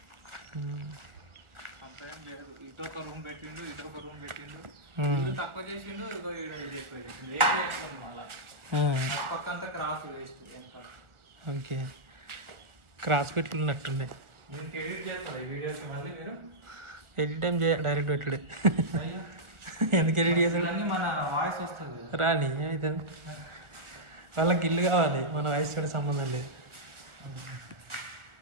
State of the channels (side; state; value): left; late; 1.4 ms